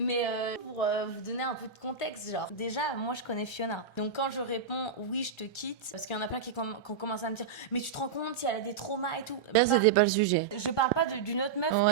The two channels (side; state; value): left; quieter; 5.9 dB